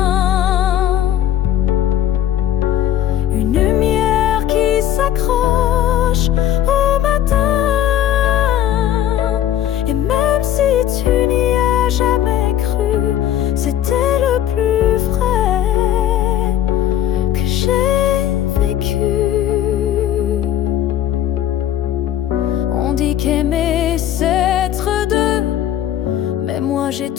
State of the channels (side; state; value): right; quieter; 11.4 dB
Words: Une lumière qui s'accroche au matin. Et même si tu n'y as jamais cru, c'était le plus vrai que j'ai vécu. On dit qu'aimer c'est être deux, mais moi j'ai